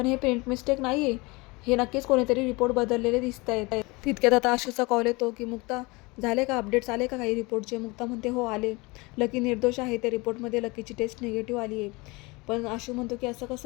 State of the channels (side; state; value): right; quieter; 24.9 dB